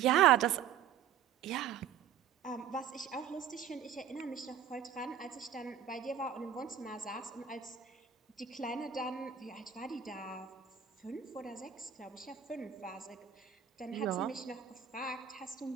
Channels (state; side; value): quieter; left; 8.9 dB